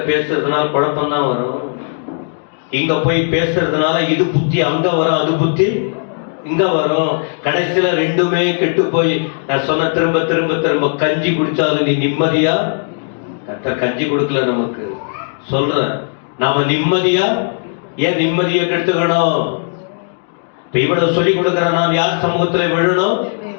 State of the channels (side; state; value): right; silent; digital silence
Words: பேசுறதுனால குழப்பம் தான் வரும். இங்க போய் பேசுறதுனால இது புத்தி அங்க வரும், அது புத்தி இங்க வரும். கடைசியில ரெண்டுமே கெட்டு போய் நான் சொன்ன திரும்ப திரும்ப திரும்ப கஞ்சி குடிச்சாலும் நீ நிம்மதியா? கர்த்தர் கஞ்சி கொடுக்கல நமக்கு. சொல்றேன், நாம நிம்மதியா? ஏன் நிம்மதியை கெடுத்துக்கணும்? இப்ப இவ்வளவு சொல்லி கொடுக்கிற நான் யார் சமூகத்துல விழணும்?